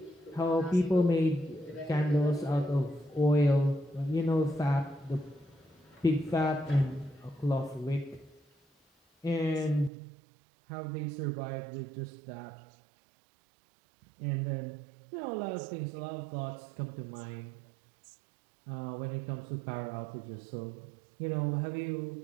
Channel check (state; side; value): drops out; left; at 9.9 s